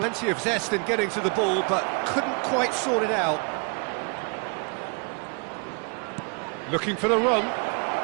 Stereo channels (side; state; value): left; quieter; 36.6 dB